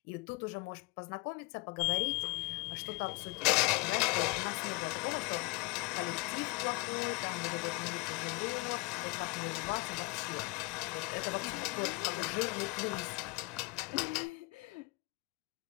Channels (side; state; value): right; quieter; 25.6 dB